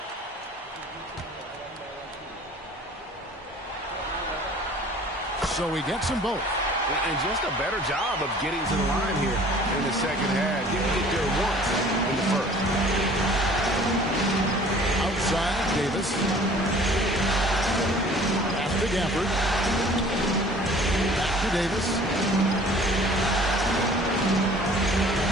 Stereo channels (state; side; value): normal; both; correlation 0.50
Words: So he gets them both. And just a better job of getting to the line here in the second half. Didn't get there once in the first. Outside, Davis. Pass to Gafford. Back to Davis.